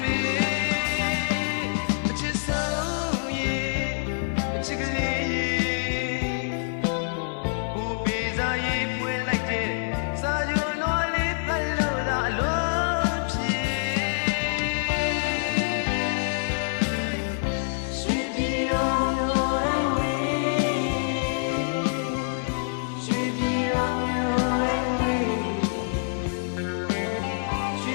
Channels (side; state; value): right; silent; 60 dB below the other